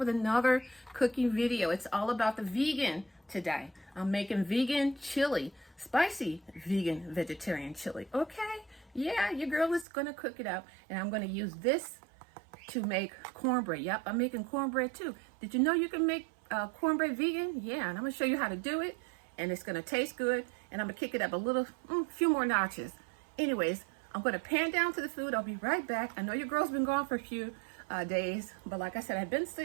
another cooking video. It's all about the vegan today. I'm making vegan chili, spicy vegan vegetarian chili. Okay, yeah, your girl is gonna cook it up, and I'm gonna use this to make cornbread. Yep, I'm making cornbread too. Did you know you can make cornbread vegan? Yeah, and I'm gonna show you how to do it, and it's gonna taste good, and I'm gonna kick it up a little, few more notches. Anyways, I'm gonna pan down to the food. I'll be right back. I know your girl's been gone for a few days, but like I said, I've been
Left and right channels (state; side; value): drops out; left; at 9.9 s